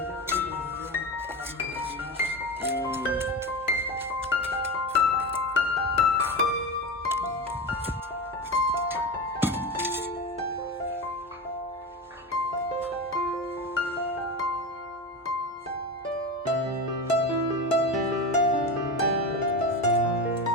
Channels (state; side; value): normal; both; correlation 0.23